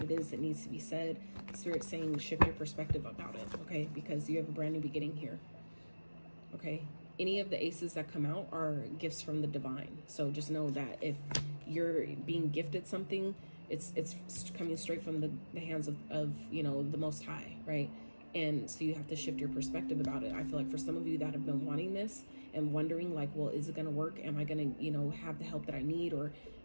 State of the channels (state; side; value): inverted; both; correlation -1.00